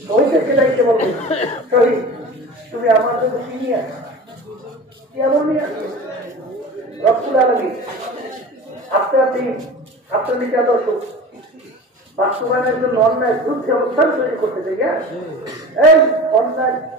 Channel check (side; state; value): both; normal; correlation 0.36